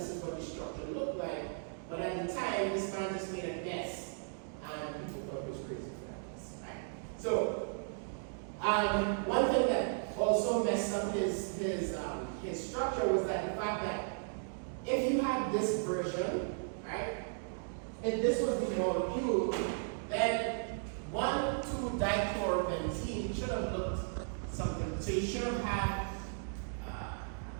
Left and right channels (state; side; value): silent; left; digital silence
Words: is what the structure looked like. But at the time, this man just made a guess, and people thought it was crazy for that guess, right? So, one thing that also messed up his structure was that the fact that if you had this version, right, if this was the molecule, then 1,2-dichlorobenzene should have looked something. So you should have had